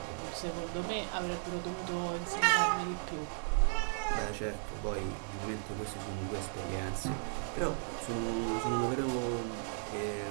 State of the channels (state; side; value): silent; left; 54 dB below the other